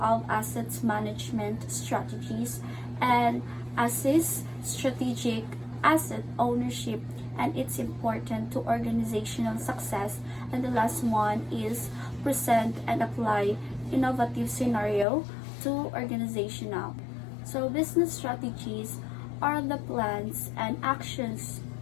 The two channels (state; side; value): drops out; right; at 15.1 s